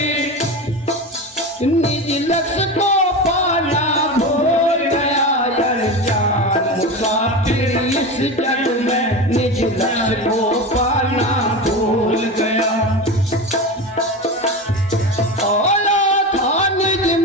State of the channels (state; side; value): normal; both; correlation 0.24